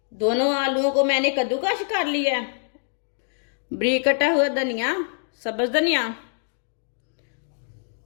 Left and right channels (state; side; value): silent; right; digital silence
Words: दोनों आलूओं को मैंने कद्दूकस कर लिया है। बारीक कटा हुआ धनिया, सब्ज धनिया,